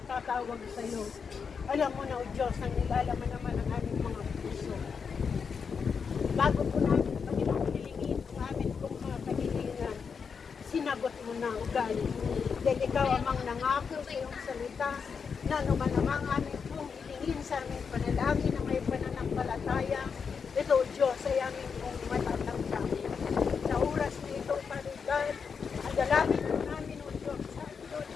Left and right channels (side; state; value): right; quieter; 6.0 dB